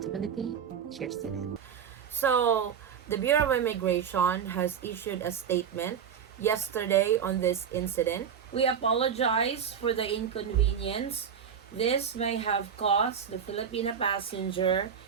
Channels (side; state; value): left; quieter; 7.7 dB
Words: Cheers to that. So, the Bureau of Immigration has issued a statement yesterday on this incident. We apologize for the inconvenience this may have caused the Filipino passenger